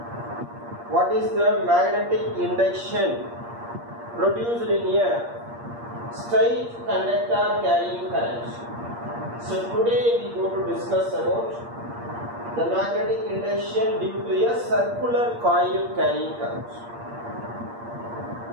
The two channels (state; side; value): late; left; 8.6 ms